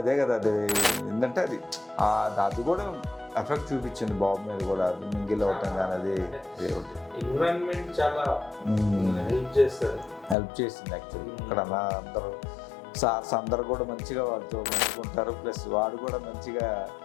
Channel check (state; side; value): drops out; right; at 10.4 s